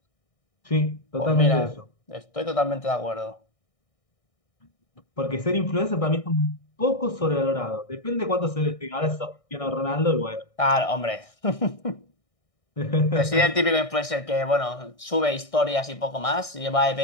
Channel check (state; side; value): late; right; 1.6 ms